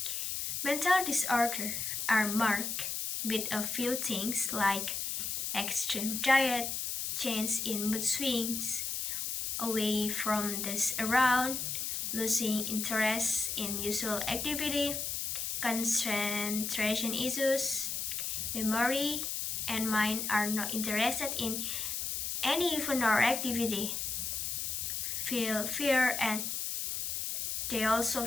Mental disorders are marked with a few things like extreme diet, change in mood swings, away from the around, losing interest in usual activity, concentration issues, memory, and mind are not interested in any fun or activity, feel fear, and they also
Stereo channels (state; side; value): noise; left; hiss, 2 dB below the sound